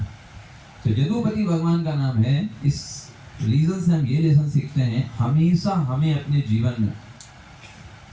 तो यदुपति भगवान का नाम है। इस रीजन से हम ये लेसन सीखते हैं, हमेशा हमें अपने जीवन में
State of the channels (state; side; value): identical; both; correlation 1.00